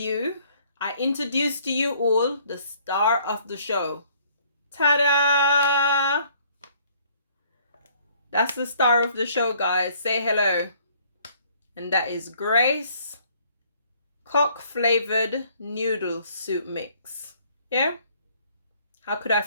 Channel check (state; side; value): inverted; both; correlation -0.61